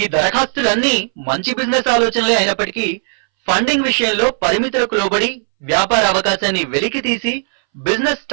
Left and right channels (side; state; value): left; silent; 65 dB below the other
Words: దరఖాస్తులన్నీ మంచి బిజినెస్ ఆలోచనలే అయినప్పటికీ ఫండింగ్ విషయంలో పరిమితులకు లోబడి వ్యాపార అవకాశాన్ని వెలికి తీసి బిజినెస్